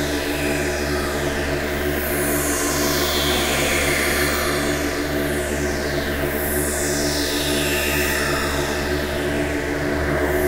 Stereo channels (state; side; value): identical; both; correlation 1.00